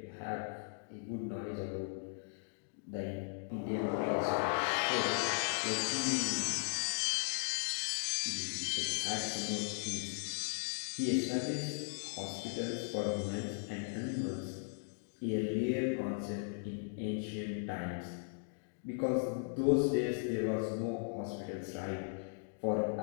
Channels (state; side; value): silent; right; digital silence